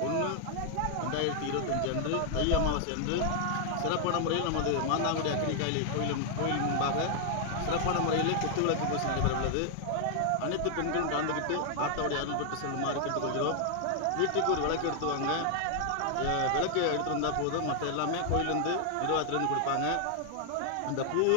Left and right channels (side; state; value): both; different; correlation 0.00